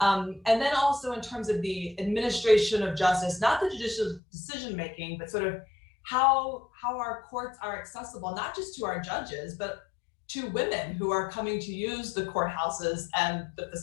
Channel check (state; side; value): drops out; right; at 4.2 s